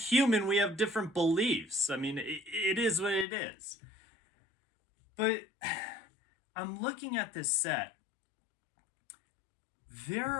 We have different beliefs. I mean, it is what it is. But I'm looking at this set. There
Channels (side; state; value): right; drops out; at 3.2 s